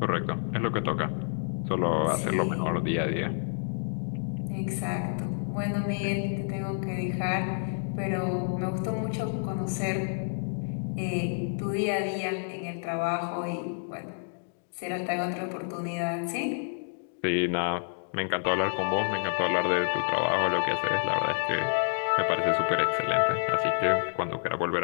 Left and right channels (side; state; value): right; silent; digital silence